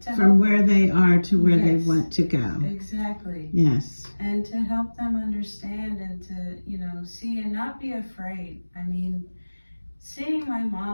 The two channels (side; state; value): both; inverted; correlation -1.00